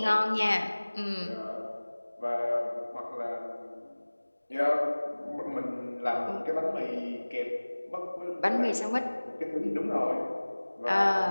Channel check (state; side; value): inverted; both; correlation -1.00